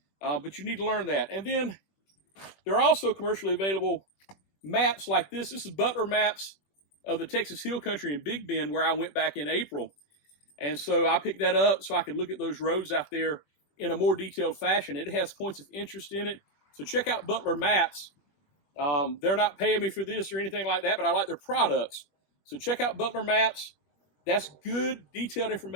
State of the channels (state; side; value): late; right; 21 ms